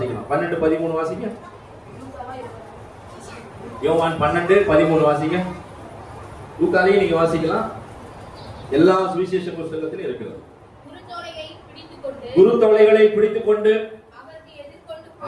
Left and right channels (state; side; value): identical; both; correlation 1.00